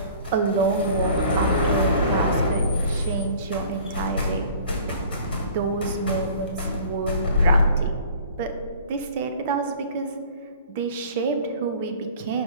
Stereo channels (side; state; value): both; inverted; correlation -0.48